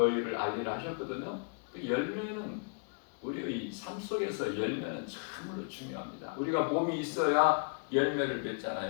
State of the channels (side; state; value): right; quieter; 38.8 dB